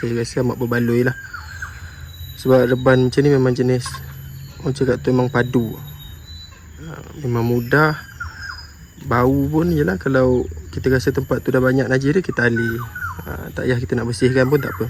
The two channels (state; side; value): identical; both; correlation 1.00